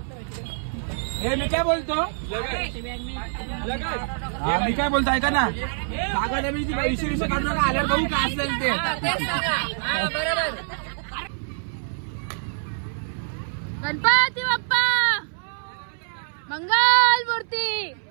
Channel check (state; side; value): silent; left; 62 dB below the other